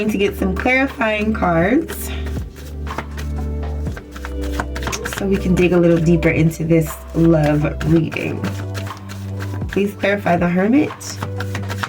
to get some clarifying cards so we can dig a little deeper into this love reading. Please clarify the Hermit.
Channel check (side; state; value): both; identical; correlation 1.00